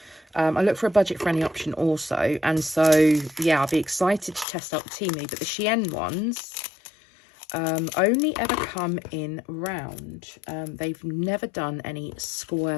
I look for a budget-friendly option also. And so, yeah, I'll be excited to test out the Temu. But the Shein ones only ever come in round. They've never done any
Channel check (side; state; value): right; drops out; at 4.5 s